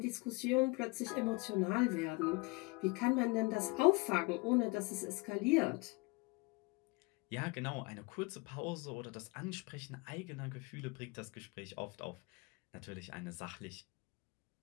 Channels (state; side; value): quieter; right; 26.5 dB